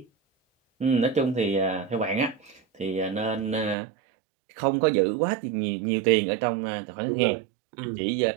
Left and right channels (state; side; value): drops out; left; at 3.8 s